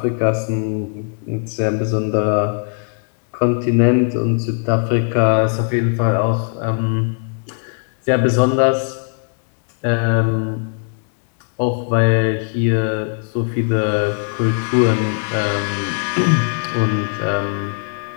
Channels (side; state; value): right; silent; 56 dB below the other